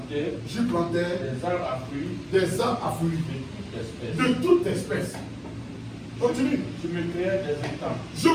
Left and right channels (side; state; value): both; identical; correlation 1.00